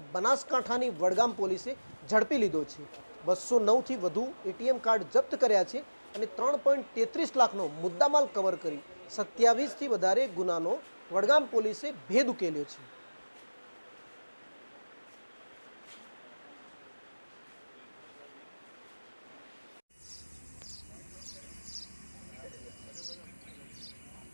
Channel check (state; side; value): inverted; both; correlation -1.00